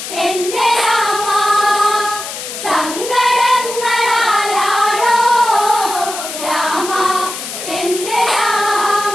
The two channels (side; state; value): left; noise; hiss, 8 dB below the sound